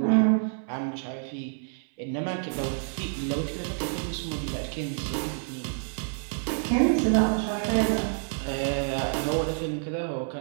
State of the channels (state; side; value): silent; left; 59 dB below the other